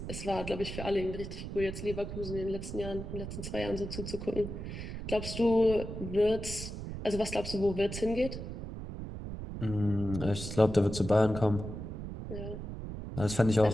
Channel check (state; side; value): noise; right; rumble, 7 dB below the sound